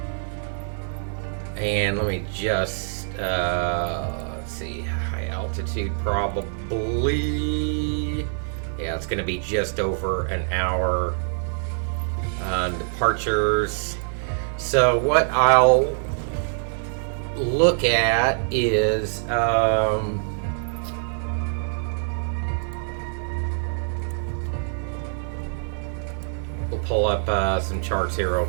And let me just, let's see, high altitude probably. Yeah, it's going to be just over an hour. Departures. So what I'll look at is, we'll pull up some charts here real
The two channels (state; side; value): silent; left; digital silence